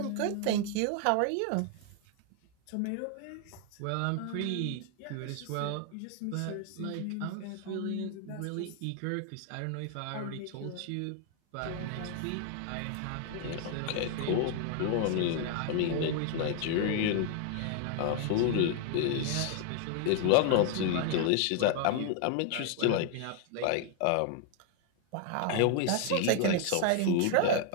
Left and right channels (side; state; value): both; different; correlation 0.00